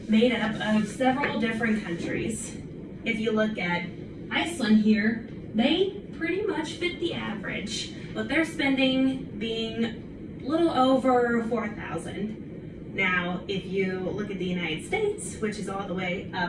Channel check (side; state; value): both; identical; correlation 1.00